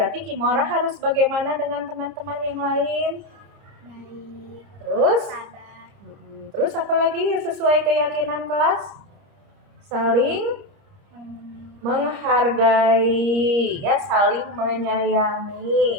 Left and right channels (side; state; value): left; late; 30 ms